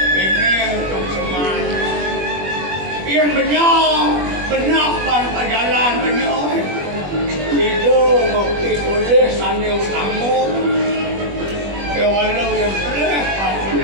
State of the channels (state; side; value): late; left; 21 ms